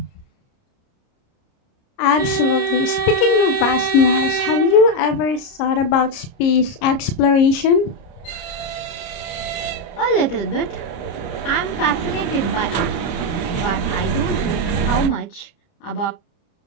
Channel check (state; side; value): late; right; 30 ms